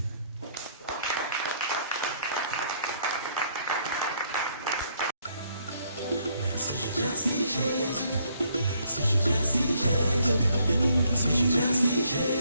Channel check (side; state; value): both; inverted; correlation -0.68